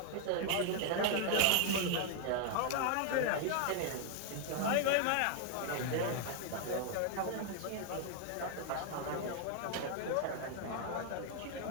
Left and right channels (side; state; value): both; different; correlation 0.00